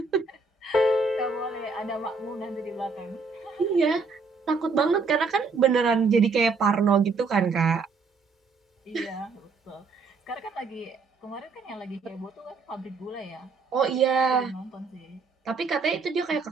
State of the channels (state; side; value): quieter; left; 4.4 dB